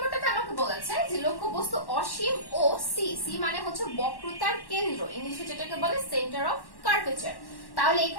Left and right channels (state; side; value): late; right; 1.1 ms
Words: আমাকে বলেছে যে লক্ষ্যবস্তু অসীম ও সি মানে বক্রতার কেন্দ্র, ইংলিশে যেটাকে বলে সেন্টার অফ কার্ভেচার। তাহলে